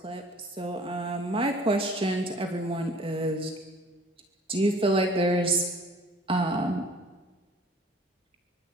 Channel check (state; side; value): normal; both; correlation 0.50